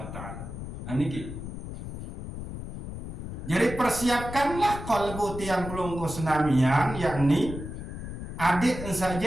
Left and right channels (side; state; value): left; noise; rumble, 8 dB below the sound